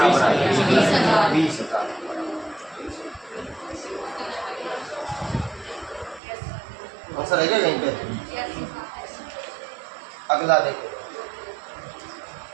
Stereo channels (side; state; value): left; drops out; at 6.2 s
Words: आएगा? 20,000। आंसर है क्या कहीं पे? अगला देखो,